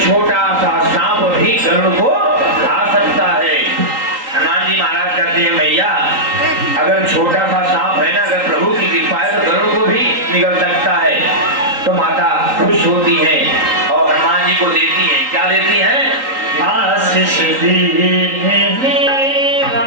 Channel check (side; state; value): left; late; 3.8 ms